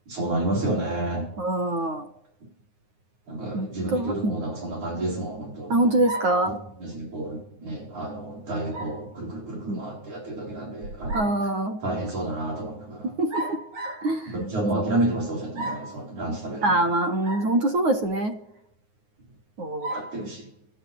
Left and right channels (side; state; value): left; late; 9.5 ms